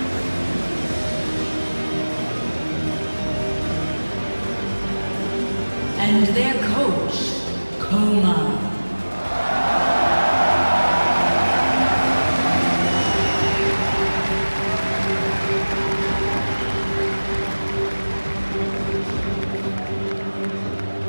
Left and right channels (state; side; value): inverted; both; correlation -1.00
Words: And their coach, KOO.